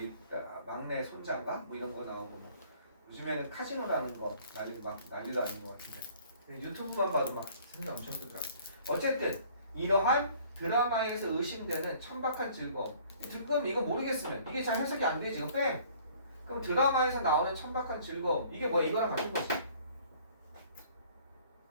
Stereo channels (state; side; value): inverted; both; correlation -0.55